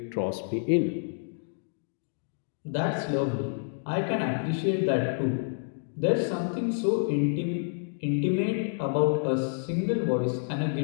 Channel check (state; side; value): silent; right; digital silence